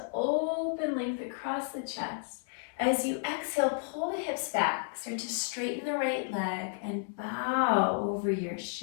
open length across the chest. As you exhale, pull the hips back. Start to straighten the right leg and bow over your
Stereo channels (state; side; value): silent; right; 56 dB below the other